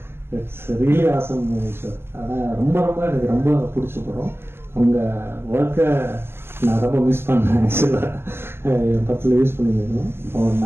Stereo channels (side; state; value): left; late; 0.12 ms